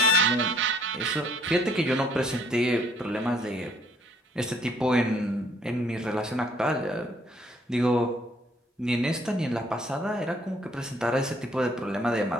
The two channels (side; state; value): both; normal; correlation 0.63